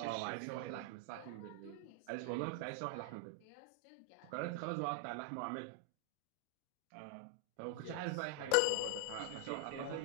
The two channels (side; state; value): both; different; correlation 0.00